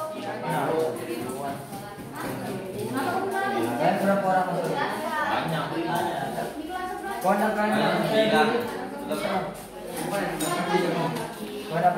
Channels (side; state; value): both; identical; correlation 1.00